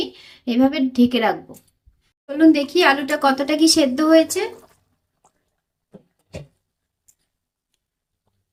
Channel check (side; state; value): both; identical; correlation 1.00